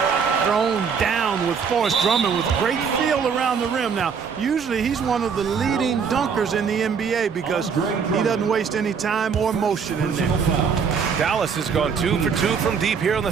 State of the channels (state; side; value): quieter; left; 6.3 dB